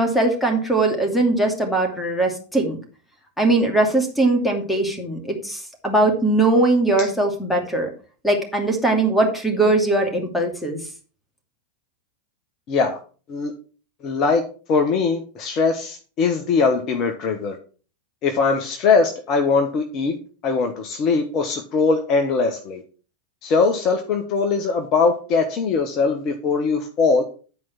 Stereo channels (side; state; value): both; normal; correlation 0.36